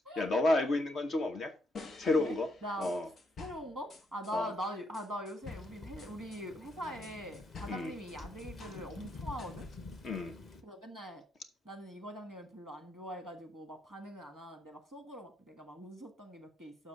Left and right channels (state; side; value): normal; both; correlation 0.77